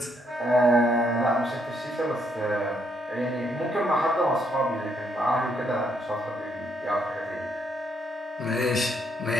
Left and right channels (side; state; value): both; normal; correlation 0.73